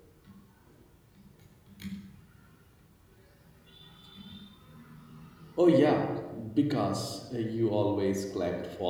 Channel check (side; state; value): both; identical; correlation 1.00